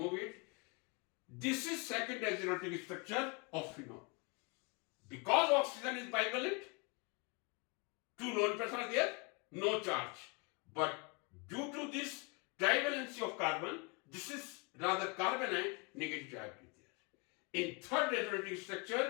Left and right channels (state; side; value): quieter; right; 30.5 dB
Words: it. This is second resonating structure of phenol. Because oxygen is bivalent, two lone pairs are there, no charge. But due to this trivalency of carbon, this is rather carbon ion, negative charge is there. In third resonating